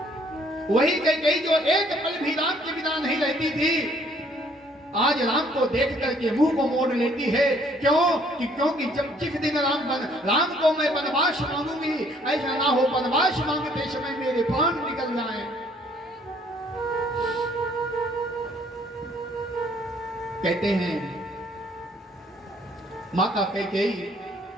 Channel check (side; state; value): both; normal; correlation 0.62